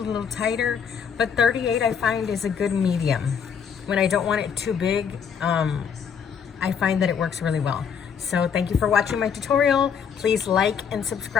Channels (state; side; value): quieter; right; 7.1 dB